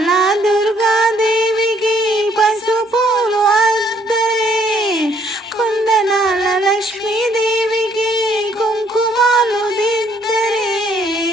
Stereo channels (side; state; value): both; normal; correlation 0.66